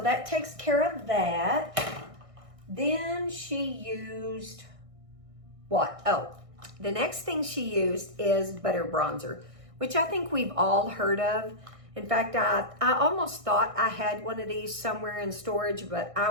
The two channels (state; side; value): late; left; 1.6 ms